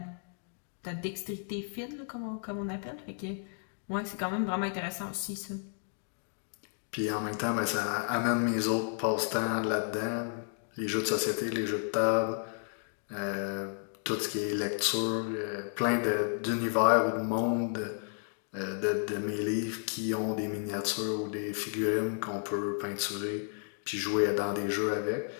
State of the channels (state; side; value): silent; right; 56 dB below the other